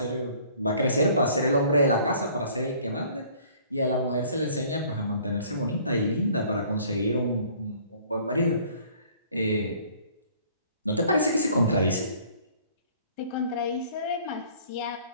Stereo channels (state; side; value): inverted; both; correlation -0.55